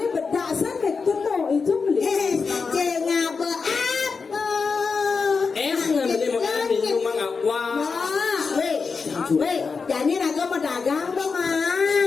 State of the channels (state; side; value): quieter; right; 5.0 dB